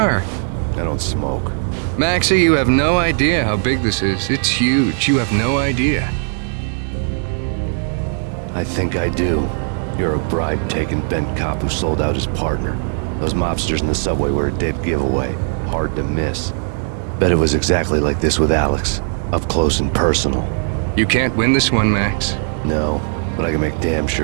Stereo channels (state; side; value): silent; left; 59 dB below the other